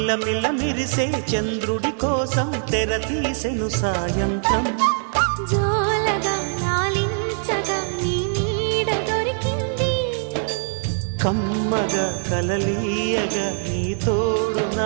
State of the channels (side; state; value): left; silent; digital silence